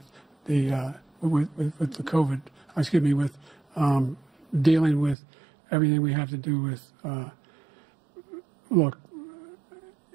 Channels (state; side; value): drops out; left; at 5.2 s